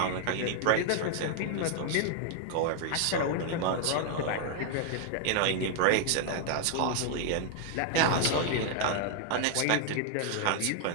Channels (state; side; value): different; both; correlation 0.00